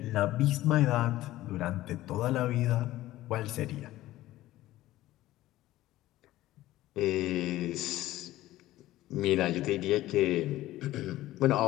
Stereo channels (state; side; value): quieter; right; 15.7 dB